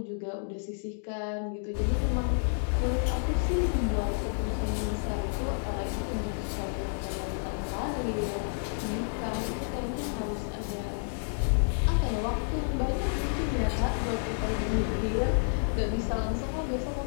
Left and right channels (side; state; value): right; silent; digital silence